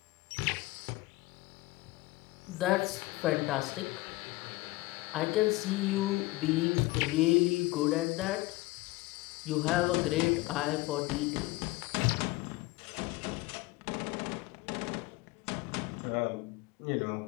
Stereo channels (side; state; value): right; quieter; 20.6 dB